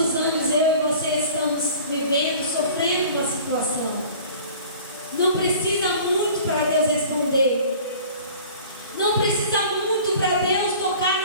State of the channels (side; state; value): both; inverted; correlation -0.46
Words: anos eu e você estamos vivendo, sofrendo uma situação? Não precisa muito para Deus responder. Não precisa muito para Deus tocar